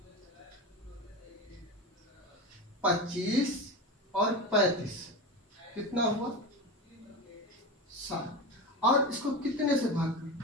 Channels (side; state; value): both; normal; correlation 0.23